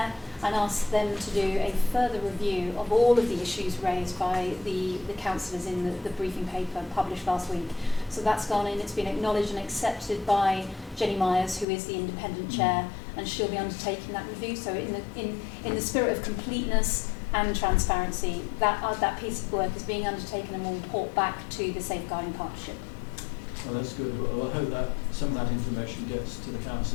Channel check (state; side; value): drops out; right; at 11.7 s